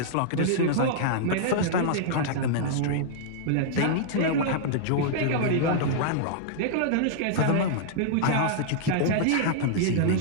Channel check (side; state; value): both; different; correlation -0.01